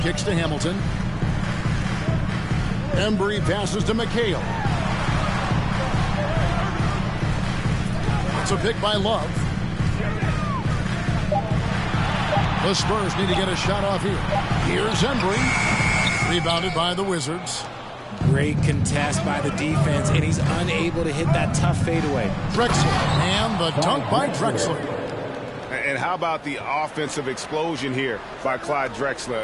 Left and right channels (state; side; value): identical; both; correlation 1.00